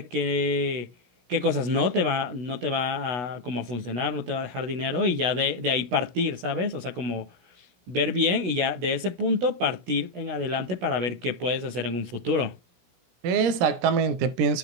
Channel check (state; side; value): late; left; 16 ms